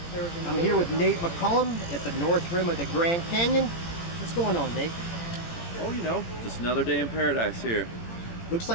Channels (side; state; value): right; late; 18 ms